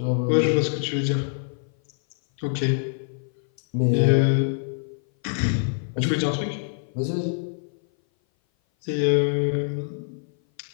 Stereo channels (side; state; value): right; silent; 58 dB below the other